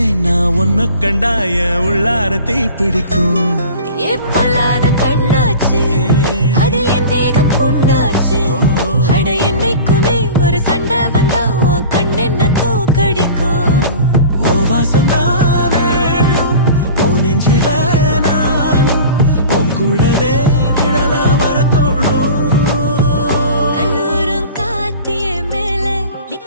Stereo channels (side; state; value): both; inverted; correlation -0.39